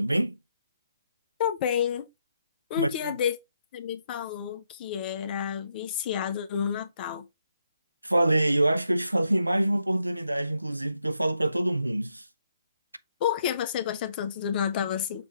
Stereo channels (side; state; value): both; inverted; correlation -0.78